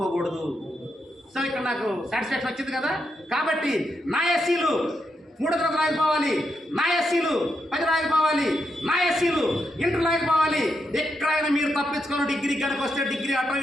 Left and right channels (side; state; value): both; normal; correlation 0.83